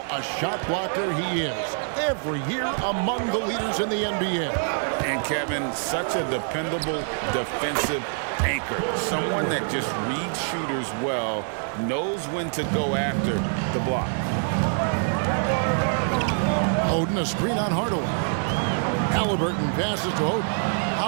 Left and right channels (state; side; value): silent; left; 62 dB below the other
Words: a shot blocker he is. Every year among the leaders in the NBA. And Kevin, such a dependable defensive anchor. Someone that just reads shooters well, knows when to go after the block. Oden, a screen on Hardaway. Halliburton passes to Oden.